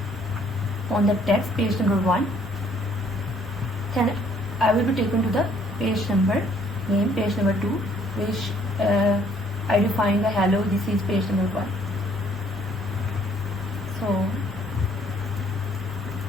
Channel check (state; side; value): normal; both; correlation 0.62